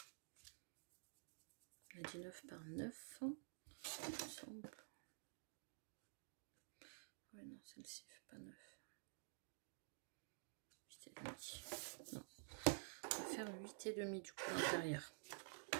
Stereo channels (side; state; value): left; silent; digital silence